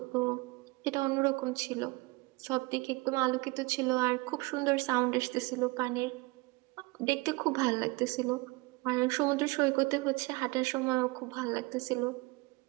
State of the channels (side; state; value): left; quieter; 24.6 dB